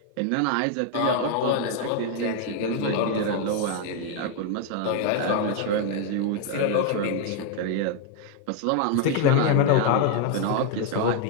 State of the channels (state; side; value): different; both; correlation 0.01